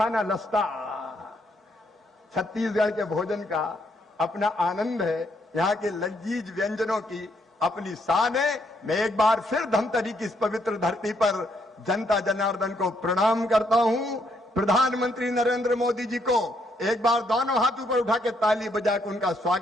लस्ता। छत्तीसगढ़ के भोजन का अपना आनंद है, यहाँ के लजीज व्यंजनों की अपनी शान है। मैं एक बार फिर धमतरी की इस पवित्र धरती पर जनता जनार्दन को प्रणाम करता हूं। प्रधानमंत्री नरेंद्र मोदी जी को एक बार दोनों हाथ ऊपर उठा के ताली बजा के उनका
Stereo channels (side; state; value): both; normal; correlation 0.73